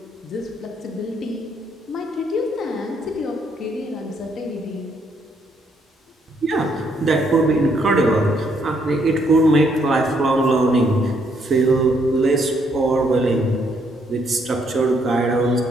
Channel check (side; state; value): both; normal; correlation 0.71